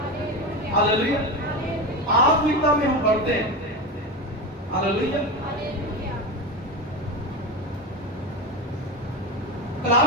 hallelujah. आत्मिकता में हम बढ़ते हैं। हालेलुया।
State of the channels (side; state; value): both; normal; correlation 0.20